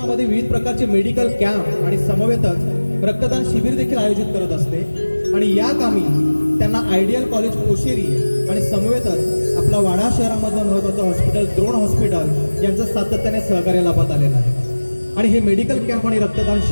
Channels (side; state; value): both; inverted; correlation -1.00